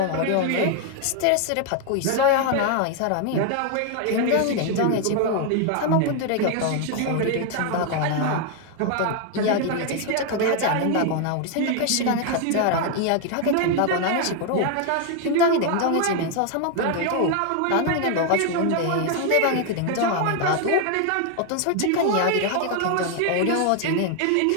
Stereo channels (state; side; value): different; both; correlation 0.00